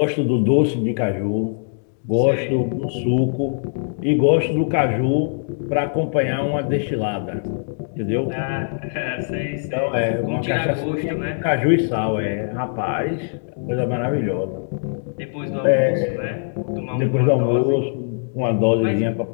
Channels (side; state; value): right; silent; digital silence